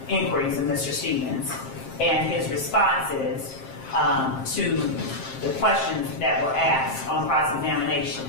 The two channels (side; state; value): right; late; 7.6 ms